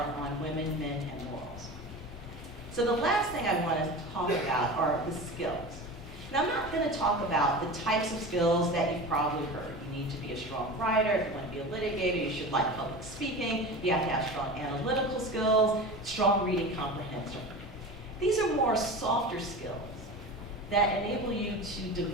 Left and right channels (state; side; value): normal; both; correlation 0.31